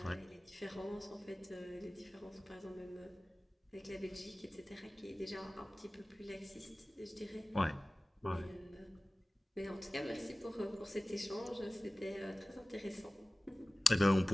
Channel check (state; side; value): normal; both; correlation 0.97